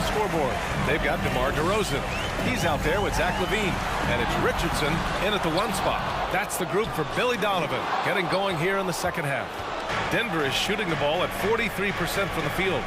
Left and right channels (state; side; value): identical; both; correlation 1.00